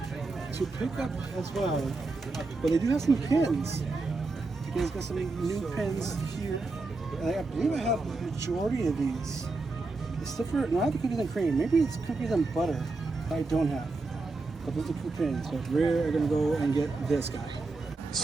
pick up as well. But they do have some pins. You guys got some new pins here. And I believe I have the majority of these. It's different. Not the cookies and cream. Maybe it's cookies and butter that I don't have. But those are cool pins. So we're gonna go and get this guy.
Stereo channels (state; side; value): quieter; left; 3.5 dB